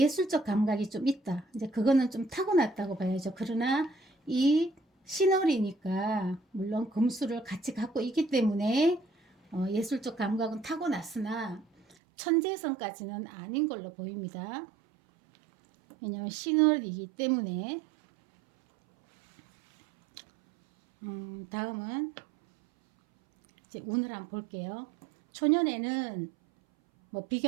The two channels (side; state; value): left; drops out; at 12.0 s